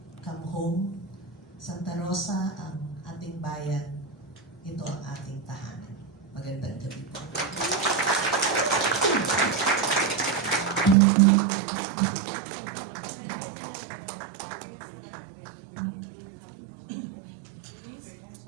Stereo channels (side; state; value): left; drops out; at 11.0 s